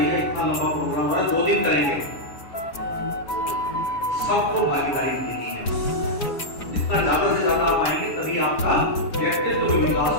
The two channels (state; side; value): late; right; 7.2 ms